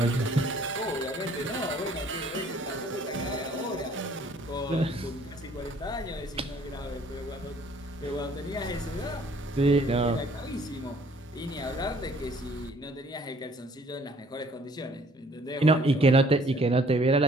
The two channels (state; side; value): normal; both; correlation 0.58